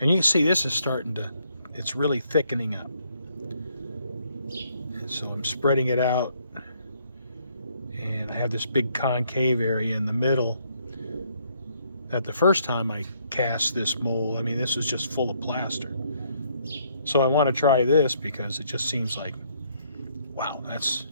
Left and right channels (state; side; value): inverted; both; correlation -0.69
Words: And you can see this is starting to, it's really thickening up. And so I'm spreading it out, and I have this big concave area in the middle that the first time I cast this mold, I mean, this was just full of plaster. So I want to try this because it just seems like, wow,